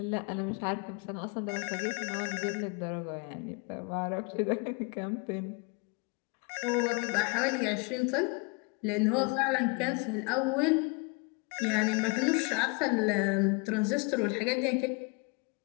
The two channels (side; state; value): right; quieter; 30.3 dB